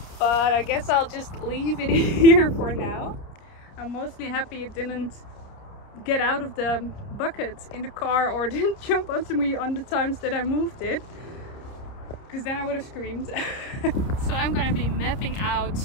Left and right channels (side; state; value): right; late; 30 ms